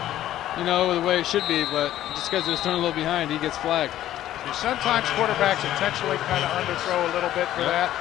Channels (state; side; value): quieter; right; 12.9 dB